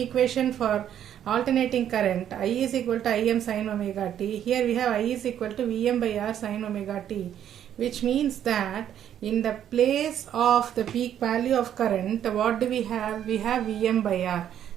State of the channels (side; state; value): left; quieter; 10.2 dB